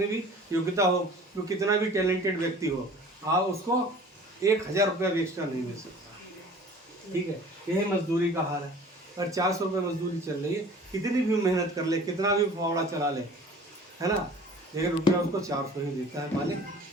भी योग्यता हो, वो कितना भी टैलेंटेड व्यक्ति हो, आप उसको 1,000 रुपया भी एक्स्ट्रा नहीं मिल सकता। ठीक है। यही मजदूरी का हाल है। अगर 400 रुपये मजदूरी चल रही है, कितनी भी मेहनत कर ले, कितना भी फावड़ा चला ले, है ना, लेकिन रुपया उसको 400 ही देता है मालिक,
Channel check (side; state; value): both; normal; correlation 0.46